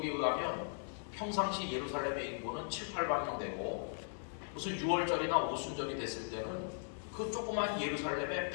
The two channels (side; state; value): right; silent; digital silence